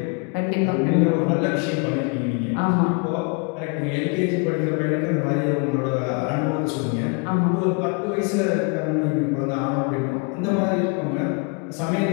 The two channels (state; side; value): quieter; right; 33.5 dB